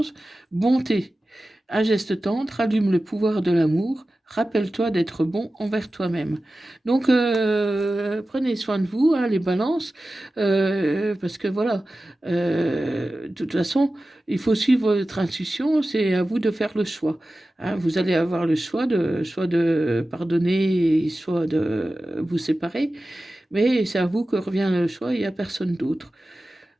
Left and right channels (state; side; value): normal; both; correlation 0.95